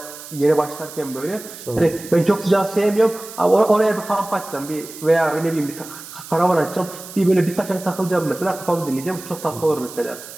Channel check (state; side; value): noise; right; hiss, 15 dB below the sound